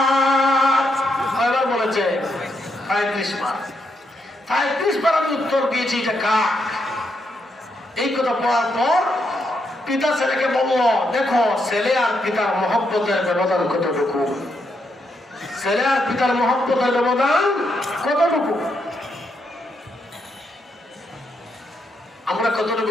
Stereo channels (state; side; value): normal; both; correlation 0.79